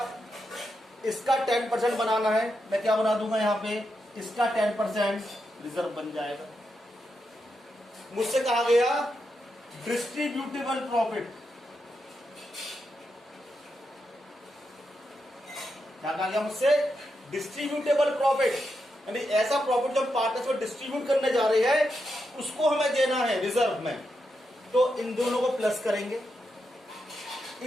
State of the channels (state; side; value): normal; both; correlation 0.85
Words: इसका 10% बनाना है, मैं क्या बना दूंगा यहां पे? इसका 10% रिजर्व बन जाएगा। मुझसे कहा गया डिस्ट्रीब्यूटेबल प्रॉफिट, क्या कहा गया मुझसे? डिस्ट्रीब्यूटेबल प्रॉफिट, यानी ऐसा प्रॉफिट जो हम पार्टनर्स में डिस्ट्रीब्यूट करने जा रहे हैं उसको हमें देना है रिजर्व में। तो इन दोनों को प्लस करेंगे,